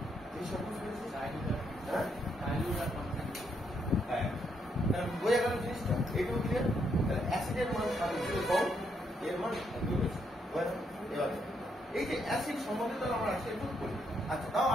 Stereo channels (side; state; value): both; normal; correlation 0.76